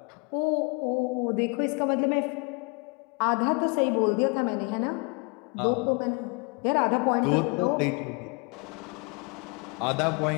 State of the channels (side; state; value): right; quieter; 31.7 dB